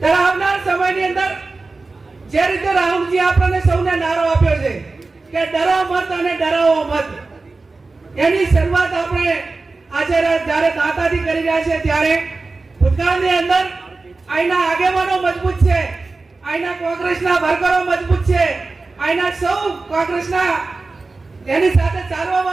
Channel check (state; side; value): quieter; left; 3.7 dB